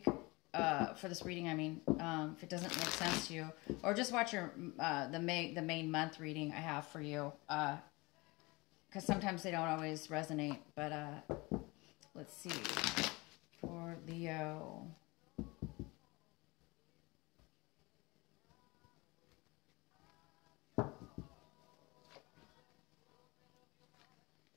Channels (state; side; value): quieter; right; 24.4 dB